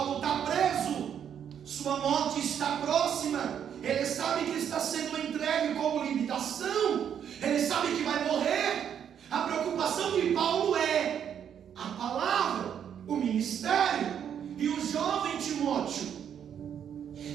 está preso, sua morte está próxima, ele sabe que está sendo entregue como limitação, ele sabe que vai morrer. A preocupação de Paulo é a palavra, o ministério. E o jovem Timóteo,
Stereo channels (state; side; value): quieter; left; 8.7 dB